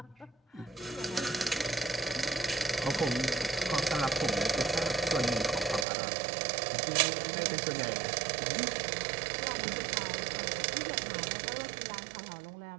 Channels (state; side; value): drops out; left; at 5.9 s